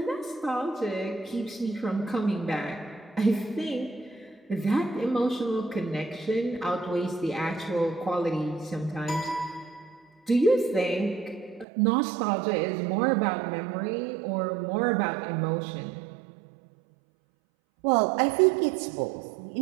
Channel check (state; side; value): drops out; left; at 11.7 s